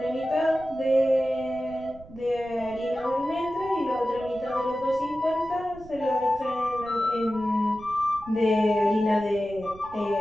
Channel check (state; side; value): noise; right; rumble, 20 dB below the sound